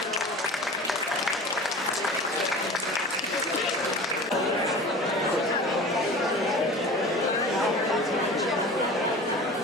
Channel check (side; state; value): both; normal; correlation 0.38